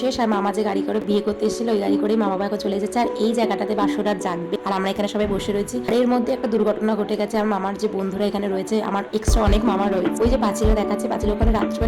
শেষ। আর মামা যে গাড়ি করে বিয়ে করতে এসেছিল ওই গাড়ি করে মা বাবা এখন চলে যাচ্ছে। আর এই জায়গাটাতে বাসর রাত জাগবে আর আমরা এখানে সবাই বসে রয়েছি। আর এর মধ্যে একটা দুর্ঘটনা ঘটে গেছে। আর মামার যে বন্ধুরা এখানে রয়েছে, আমার এক্সট্রা অনেক মামা রয়েছে, ওই যে পাঁচিলে দেখাচ্ছে, পাঁচিল ওখানে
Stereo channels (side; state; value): both; identical; correlation 1.00